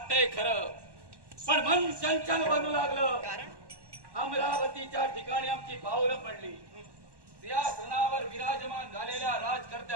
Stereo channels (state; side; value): late; left; 1.1 ms